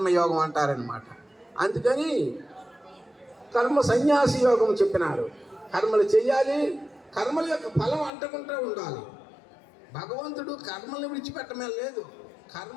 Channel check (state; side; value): drops out; right; at 8.1 s